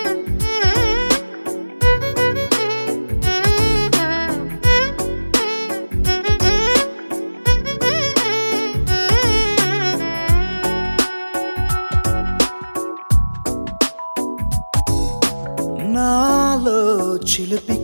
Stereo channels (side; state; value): both; inverted; correlation -1.00